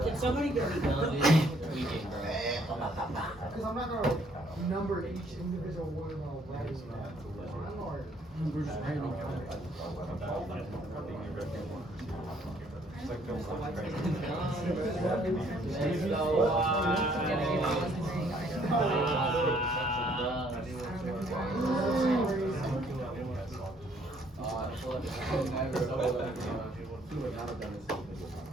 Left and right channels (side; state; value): both; normal; correlation 0.64